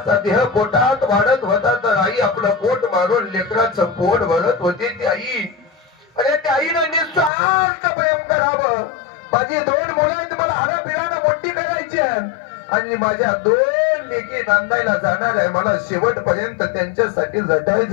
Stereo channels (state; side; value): drops out; right; at 7.3 s